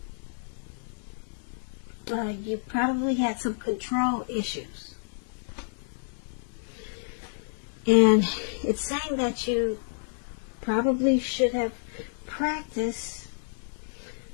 you probably had some control issues. And it's saying that you probably should have practiced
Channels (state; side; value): silent; right; 56 dB below the other